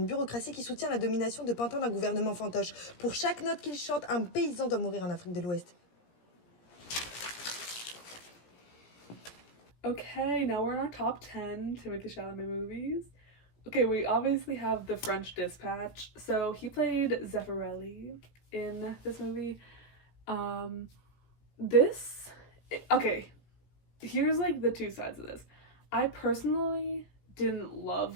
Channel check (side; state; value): right; late; 17 ms